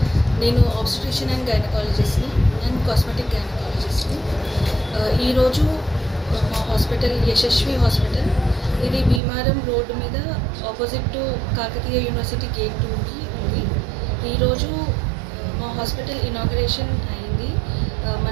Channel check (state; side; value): drops out; left; at 9.2 s